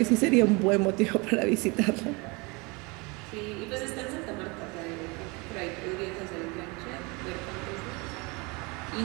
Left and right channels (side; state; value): left; quieter; 27.7 dB